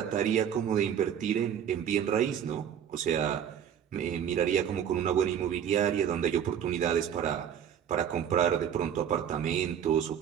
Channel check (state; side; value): quieter; left; 9.0 dB